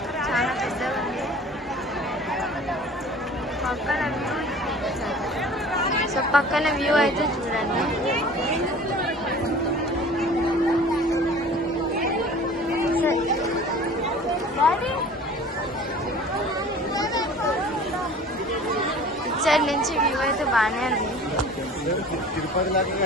చాలా పెద్దగా ఉంది. పక్కన వ్యూ, సో పక్కన వ్యూ అయితే చూడండి. ఇచ్చడి నుంచి వ్యూ అయితే బాగానే ఉంది.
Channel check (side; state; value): both; normal; correlation 0.44